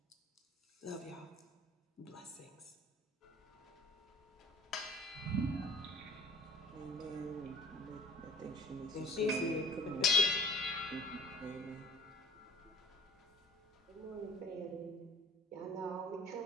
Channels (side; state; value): both; normal; correlation 0.48